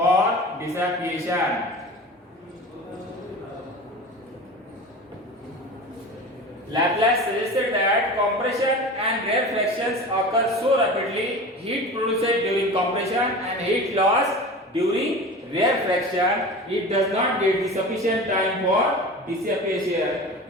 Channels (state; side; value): normal; both; correlation 0.34